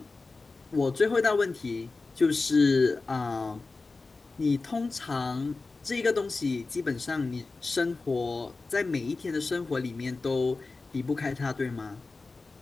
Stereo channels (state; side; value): quieter; right; 3.8 dB